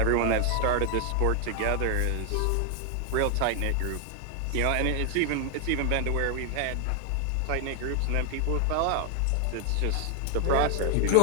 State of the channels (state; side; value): different; both; correlation 0.00